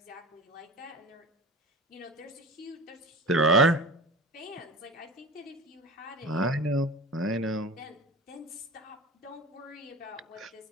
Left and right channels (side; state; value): both; normal; correlation 0.34